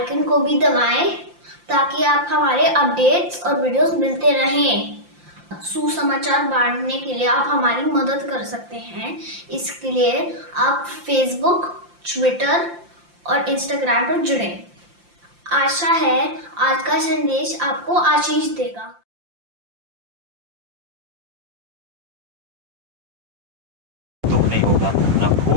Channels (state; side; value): late; left; 5.7 ms